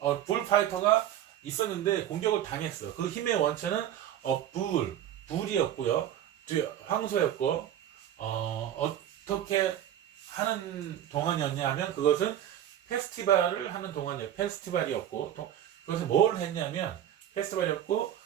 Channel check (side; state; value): left; quieter; 11.1 dB